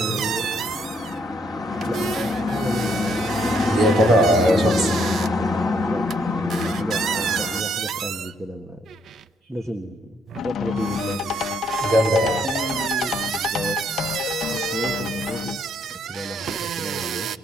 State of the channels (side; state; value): both; normal; correlation 0.71